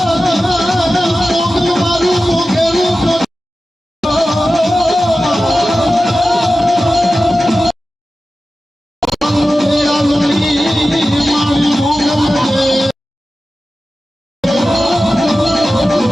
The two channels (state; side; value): normal; both; correlation 0.94